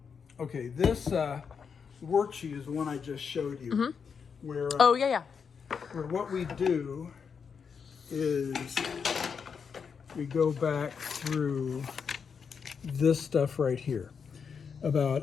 this worksheet is the one I just showed you. Where Oh, yeah. where what we do is we go back through this stuff right here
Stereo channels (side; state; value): right; quieter; 6.3 dB